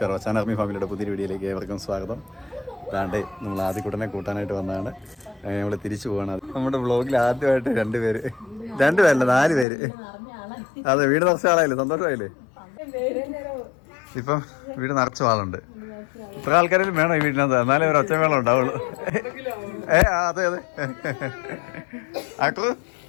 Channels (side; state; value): right; drops out; at 9.7 s